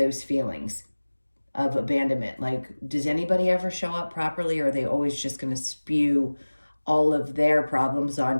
feelings of abandonment. Like, does anybody ever show up properly, or are they always just going to spew all of their problems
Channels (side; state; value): both; inverted; correlation -1.00